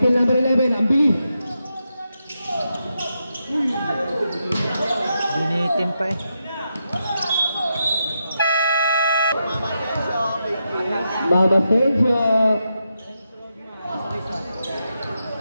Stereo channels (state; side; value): inverted; both; correlation -0.85